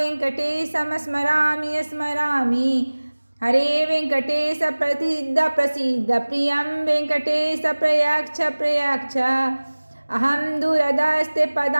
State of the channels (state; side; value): inverted; both; correlation -1.00